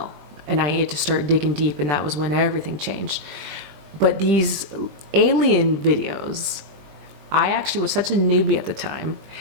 and I needed to start digging deep, and that was when everything changed. But these alien videos, I actually was such a newbie at the time.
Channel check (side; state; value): left; late; 20 ms